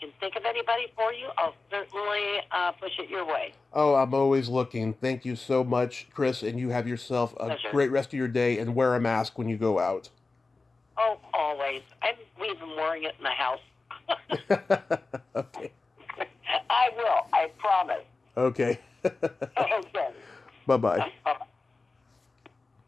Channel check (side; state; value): right; quieter; 3.7 dB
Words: think of anybody for you, I'll certainly push it your way. Oh, I'm always looking. Thank you so much, Chris, and you have yourself a Pleasure. great rest of your day, and wear a mask when you go out. Oh, always. I'm even wearing it in the house. Okay. I will. I promise. Okay. Okay. Bye-bye.